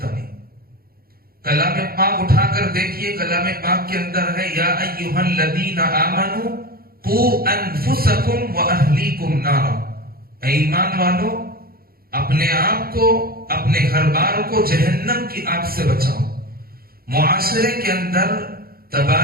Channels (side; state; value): left; late; 0.44 ms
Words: نہیں. کلام پاک اٹھا کر دیکھیے، کلام پاک کے اندر ہے یا ایھا الذین آمنوا قوا انفسکم واہلیکم نارا. اے ایمان والو، اپنے آپ کو، اپنے گھر بار کو جہنم کی آگ سے بچاؤ. معاشرے کے اندر